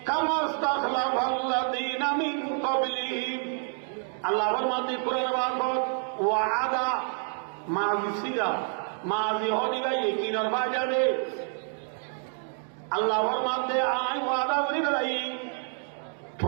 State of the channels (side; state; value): left; silent; 55 dB below the other